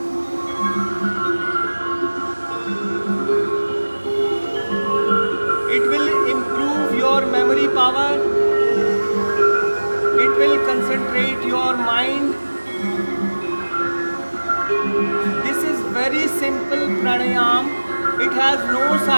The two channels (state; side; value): inverted; both; correlation -1.00